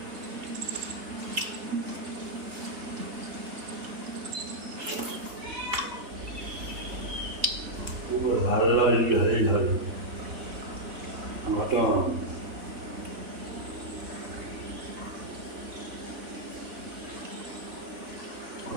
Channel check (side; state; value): left; late; 3.6 ms